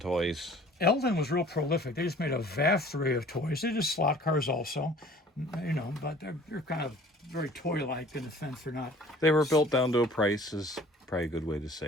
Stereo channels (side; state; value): both; normal; correlation 0.50